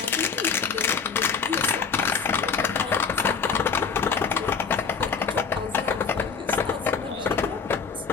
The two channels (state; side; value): quieter; right; 5.8 dB